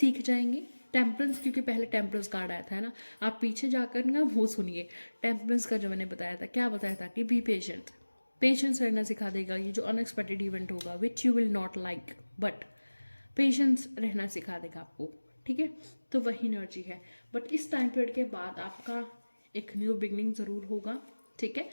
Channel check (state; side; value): inverted; both; correlation -1.00